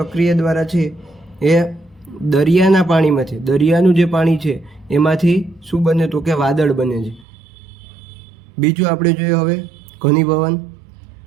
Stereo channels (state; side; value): drops out; left; at 7.2 s